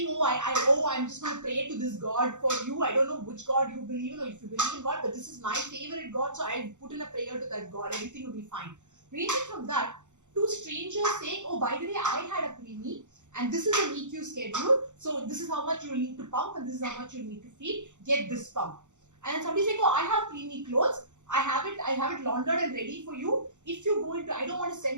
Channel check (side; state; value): left; late; 0.85 ms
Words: I'm just going to pray to this God for you. I don't know which God you believe in, or if you believe in God, but this is my favorite God, so I'll put in a prayer to that God. Everything will be fine. Ranging from that to strangers saying, oh, by the way, I had a preemie, and this is an EQ schedule, so this is how much you'll need to pump, and this is how much you'll need to feed. Get this pump. And then somebody saying, oh, I have preemie clothes. I have it laundered and ready for you. If you go into, I don't want to